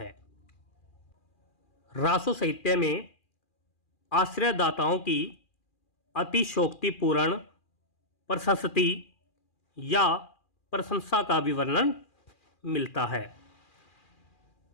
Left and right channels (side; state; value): right; late; 2.4 ms